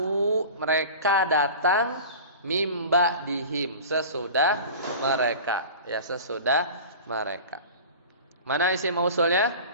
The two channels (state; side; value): inverted; both; correlation -0.36